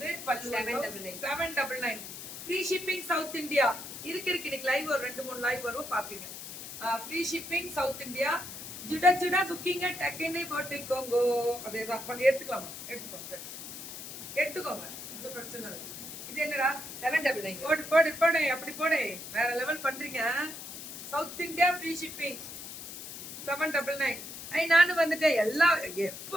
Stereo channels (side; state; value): left; noise; hiss, 10 dB below the sound